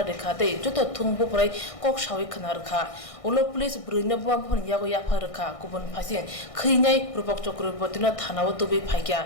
रेखा ते जत थुंबो पराय कक सावै खनारखा उलो पुलिस बरिनो बुमा फन यागो याफारखा गुबुन फासि खैनाय रूपक चक्रवर्तीनो थानाव तबे फाइका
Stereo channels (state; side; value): late; right; 1.6 ms